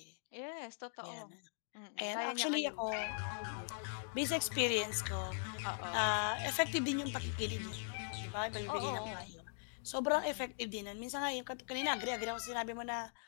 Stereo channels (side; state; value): right; silent; digital silence